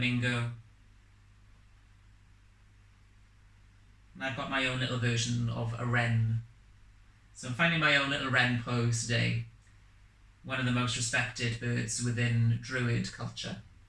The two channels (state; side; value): identical; both; correlation 1.00